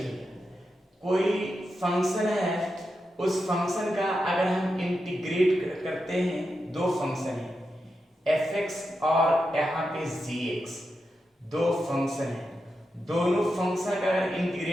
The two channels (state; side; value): normal; both; correlation 0.88